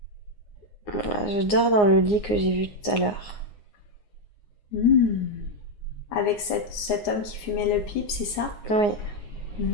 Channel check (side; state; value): right; late; 9.6 ms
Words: Je dors dans le lit que j'ai vu tout à l'heure. Avec cet homme qui fumait le pipe, c'est ça? Oui.